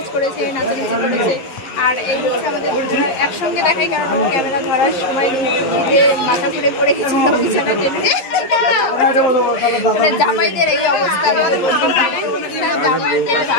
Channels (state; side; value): late; right; 11 ms